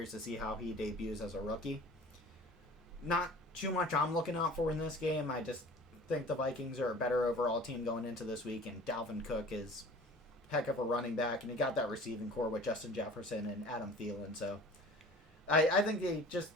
to see how he debuts as a rookie. Not too much I'm looking out for in this game. I just think the Vikings are a better overall team going into this week, and Dalvin Cook is heck of a running back, and he got that receiving core with Justin Jefferson and Adam Thielen. So I think they just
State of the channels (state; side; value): normal; both; correlation 0.44